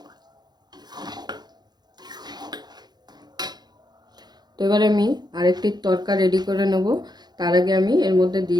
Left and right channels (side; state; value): left; late; 0.20 ms